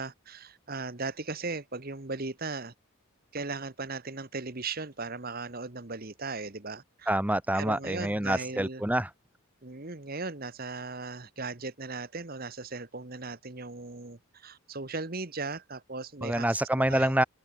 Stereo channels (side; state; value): both; normal; correlation 0.64